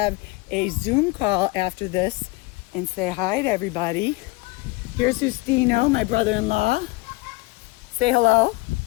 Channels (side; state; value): right; quieter; 22.9 dB